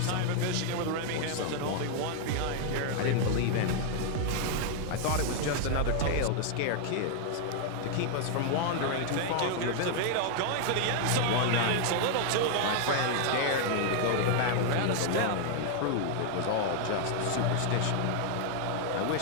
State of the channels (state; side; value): different; both; correlation 0.00